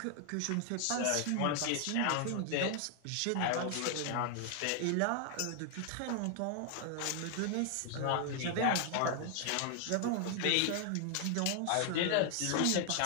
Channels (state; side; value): different; both; correlation 0.00